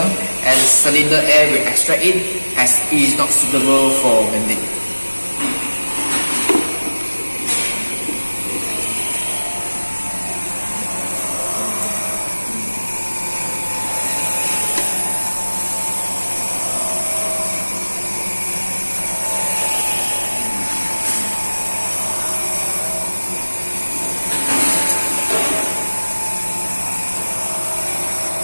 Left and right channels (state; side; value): inverted; both; correlation -1.00